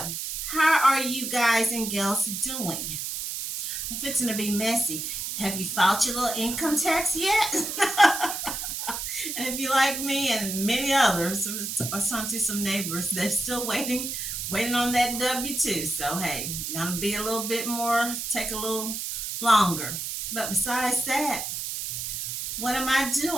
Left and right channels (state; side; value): noise; right; hiss, 4 dB below the sound